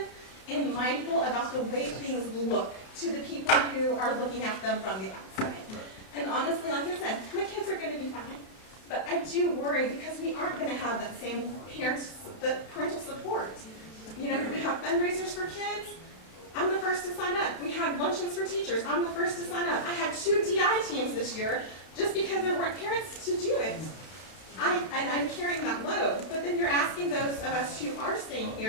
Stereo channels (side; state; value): right; late; 32 ms